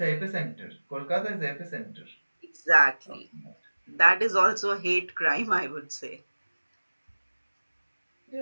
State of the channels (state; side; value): inverted; both; correlation -1.00